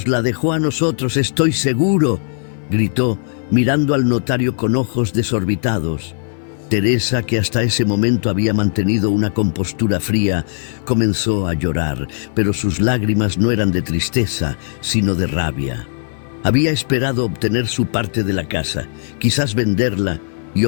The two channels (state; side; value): silent; right; 58 dB below the other